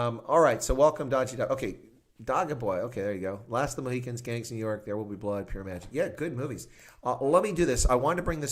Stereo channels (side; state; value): both; identical; correlation 1.00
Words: right, so welcome, Dodgy Dog. Okay, Dogga Boy. Okay, there you go. Last of the Mohicans, Gangs in New York, There Will Be Blood, Pure Magic. Yeah, good movies. Let me do this. I wanted to bring